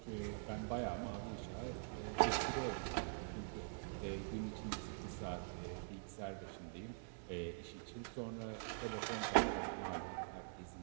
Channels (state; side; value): silent; left; digital silence